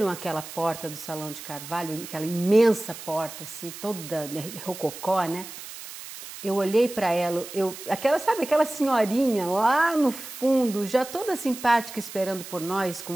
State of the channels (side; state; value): right; noise; hiss, 12 dB below the sound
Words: aquela porta do Salão de Carvalho, aquela imensa porta, assim, toda rococó, né? Eu olhei para ela, aquela senhorinha lá no fundo, já toda simpática, esperando por nós, com